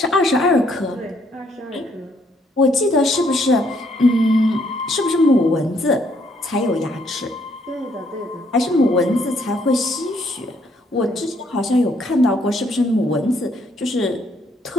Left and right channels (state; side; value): normal; both; correlation 0.69